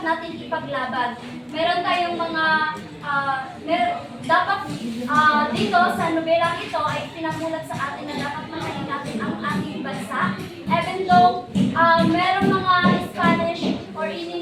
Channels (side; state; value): both; identical; correlation 1.00